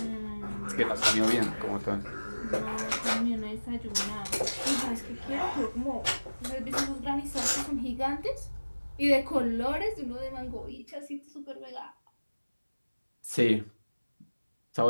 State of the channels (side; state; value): both; inverted; correlation -1.00